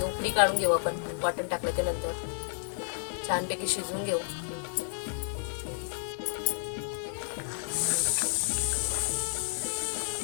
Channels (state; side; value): silent; right; 57 dB below the other